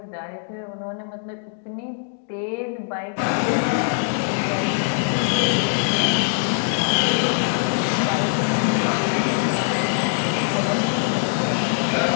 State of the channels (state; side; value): silent; right; 64 dB below the other